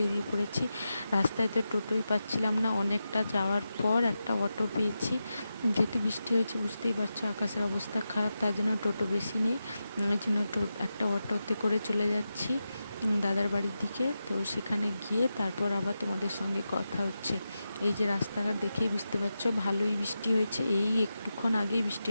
পড়েছি। রাস্তায় তো টোটোই পাচ্ছিলাম না, অনেকটা যাওয়ার পর একটা অটো পেয়েছি। যেহেতু বৃষ্টি হয়েছে বুঝতেই পারছো, আকাশের অবস্থা খারাপ, তার জন্য টোটো বেশি নেই। ওই জন্য একটা অটোতে করে চলে যাচ্ছি দাদার বাড়ির দিকে। তো সেখানে গিয়ে তারপর আবার তোমাদের সঙ্গে কথা হচ্ছে। এই যে রাস্তাঘাট দেখেই বুঝতে পারছো ভালোই বৃষ্টি হয়েছে, এই একটুক্ষণ আগেই বৃষ্টি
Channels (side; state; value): both; inverted; correlation -0.90